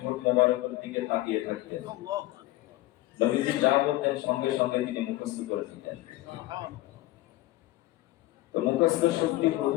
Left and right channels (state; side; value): quieter; right; 17.5 dB